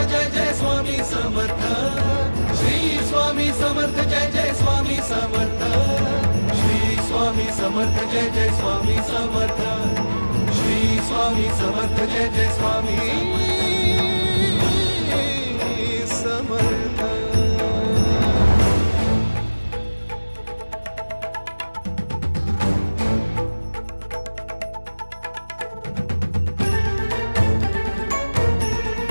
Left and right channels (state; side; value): inverted; both; correlation -1.00